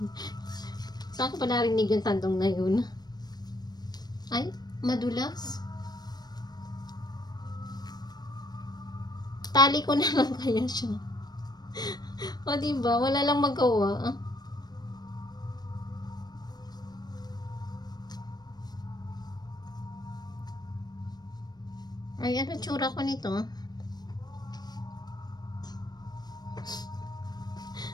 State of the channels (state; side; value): late; right; 0.19 ms